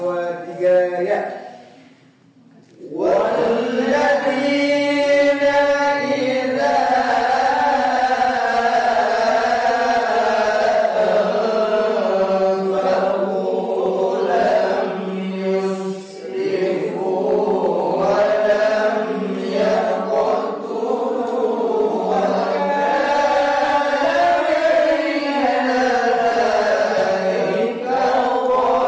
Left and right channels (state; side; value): identical; both; correlation 1.00